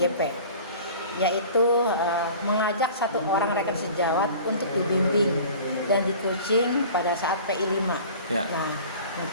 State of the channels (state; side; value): inverted; both; correlation -0.43